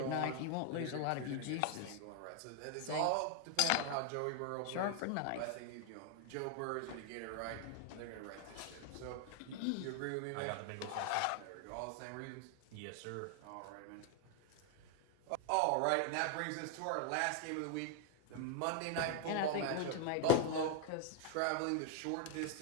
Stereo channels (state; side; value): different; both; correlation 0.00